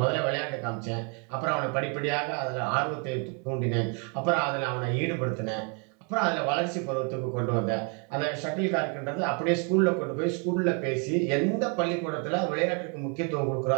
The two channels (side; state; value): left; quieter; 37.0 dB